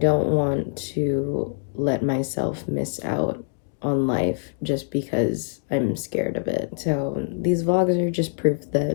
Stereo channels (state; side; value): silent; right; digital silence